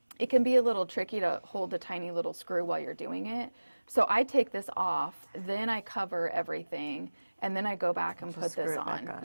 It can be a little tricky to hold the tiny little screw while you're doing it. So I take this off, then I cover everything, and then I go back and put screw this it back on. on,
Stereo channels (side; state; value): both; inverted; correlation -1.00